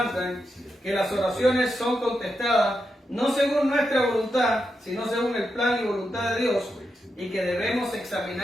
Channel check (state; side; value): normal; both; correlation 0.86